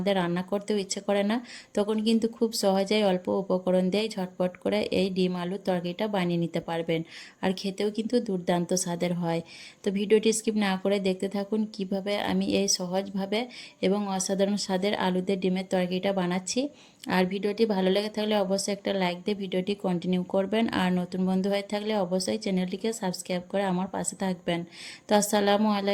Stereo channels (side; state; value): both; identical; correlation 1.00